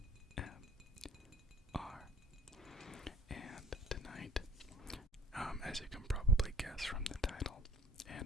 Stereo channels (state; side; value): normal; both; correlation 0.45